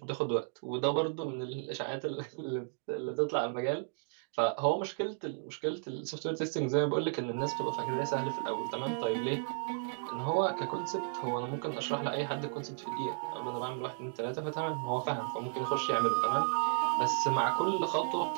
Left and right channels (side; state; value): left; silent; digital silence